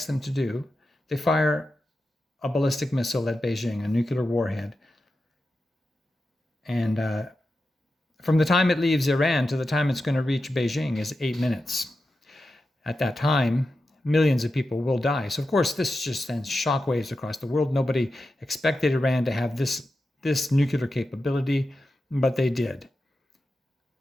them to do. They fire a ballistic missile at Beijing, a nuclear warhead. And from the time it leaves Iran to the time it's going to reach Beijing is 8 minutes. At that time, millions of people will die. So of course, this just sends shockwaves across the world. Nobody expected Iran to have this nuclear capability, but they did.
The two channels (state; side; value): normal; both; correlation 0.90